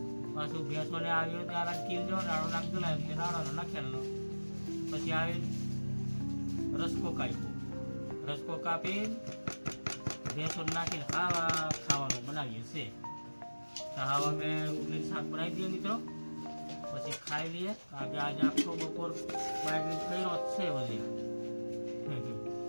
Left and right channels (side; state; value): both; inverted; correlation -1.00